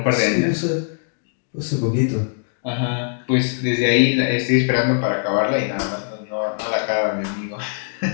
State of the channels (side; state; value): right; silent; digital silence